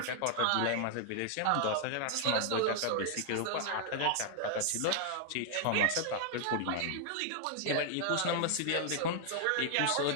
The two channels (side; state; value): both; different; correlation 0.00